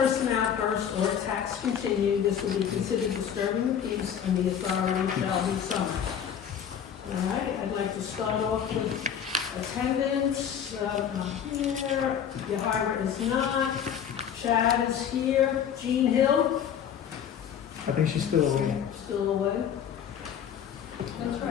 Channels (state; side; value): quieter; right; 8.5 dB